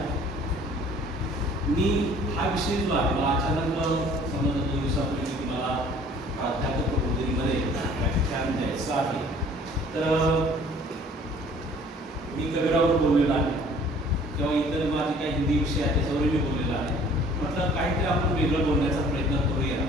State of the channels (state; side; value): normal; both; correlation 0.53